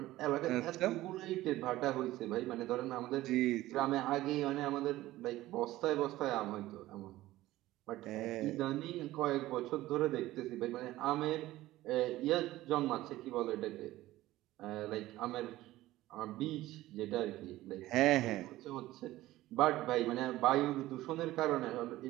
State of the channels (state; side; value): quieter; left; 16.4 dB